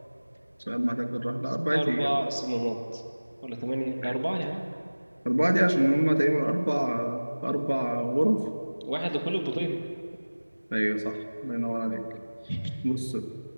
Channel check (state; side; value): inverted; both; correlation -1.00